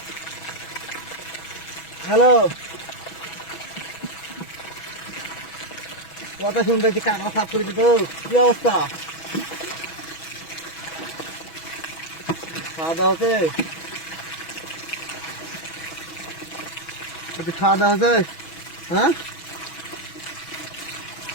হ্যালো কথা শুনতে কাকা সাফ করেছি তো কি অবস্থা খাওয়া দাওয়া হচ্ছে খাওয়া দাওয়া হচ্ছে হ্যাঁ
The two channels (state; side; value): late; right; 6.1 ms